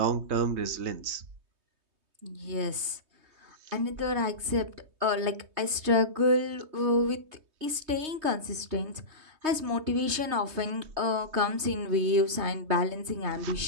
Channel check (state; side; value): late; left; 3.2 ms